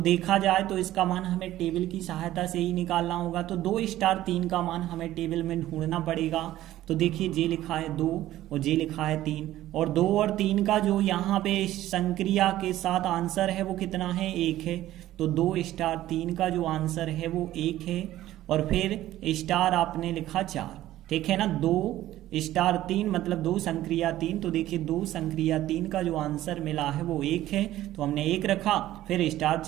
देखा जाए तो इसका मान हमें टेबल की सहायता से ही निकालना होगा। तो 2 स्टार 3 का मान हमें टेबल में ढूंढना पड़ेगा। तो देखिए जे लिखा है 2 और जे लिखा है 3, और 2 और 3 का जो यहाँ पे संक्रिया के साथ आंसर है वो कितना है? 1 है। तो 2 स्टार 3 का जो आंसर है वो 1 है। और फिर स्टार आपने लिखा 4, ठीक है ना। 2 स्टार 3 मतलब 2 संक्रिया 3। तो देखिए 2 संक्रिया 3 का जो आंसर मिला है वो 1 है, तो हमने 1 रखा। फिर स्टार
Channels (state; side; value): quieter; left; 14.4 dB